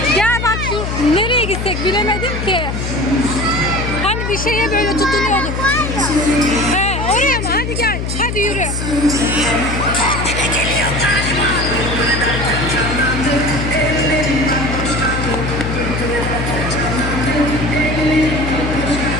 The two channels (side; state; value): left; noise; hum, 3 dB below the sound